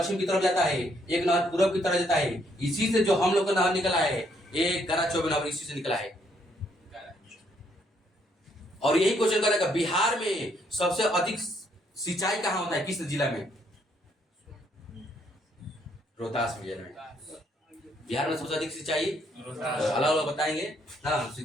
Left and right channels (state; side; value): normal; both; correlation 0.70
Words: की तरफ जाता है, एक नहर पूर्व की तरफ जाता है। इसी से जो हम लोग का नहर निकला है, एक गरा चौबे नहर इसी से निकला है। और यही क्वेश्चन करेगा बिहार में सबसे अधिक सिंचाई कहाँ होता है? किस जिला में? रोहतास जिले में। बिहार में सबसे अधिक सिंचाई अलग अलग बताएंगे ना।